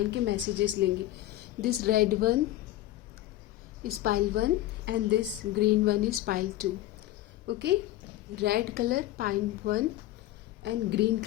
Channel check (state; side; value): quieter; right; 15.1 dB